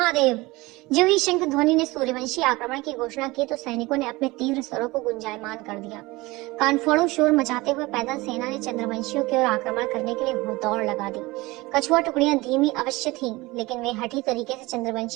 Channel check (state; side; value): quieter; left; 21.6 dB